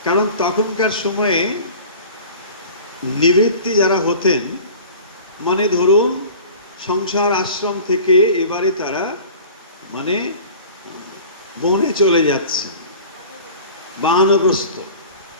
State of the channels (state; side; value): inverted; both; correlation -0.42